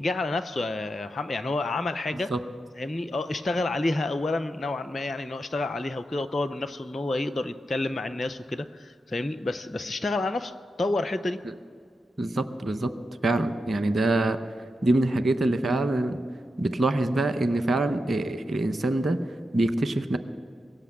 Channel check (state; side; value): normal; both; correlation 0.88